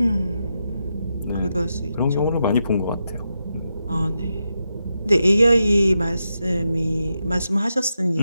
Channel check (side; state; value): both; inverted; correlation -0.86